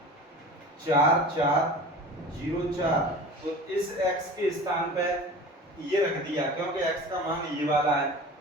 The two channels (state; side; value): normal; both; correlation 0.37